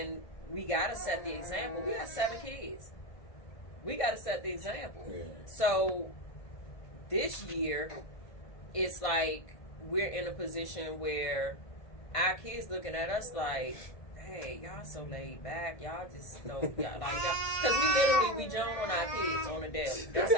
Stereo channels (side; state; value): right; late; 1.5 ms